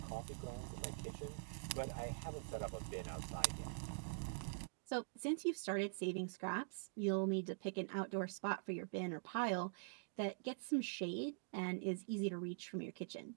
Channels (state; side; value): silent; left; digital silence